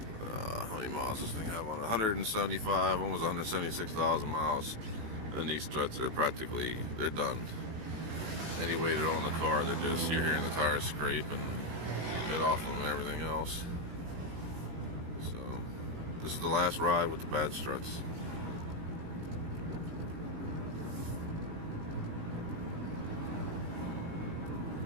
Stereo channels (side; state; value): left; late; 18 ms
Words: how many miles does this thing have on it? 175, almost 176,000 miles. And these struts are practically, they're done. Any weight on the car, they're just, you're hearing the tires scrape and bit off them and everything else. So this is the last ride with the bad struts.